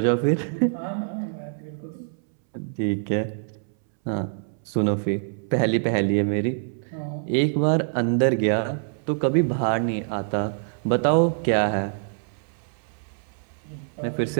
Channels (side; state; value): left; silent; 62 dB below the other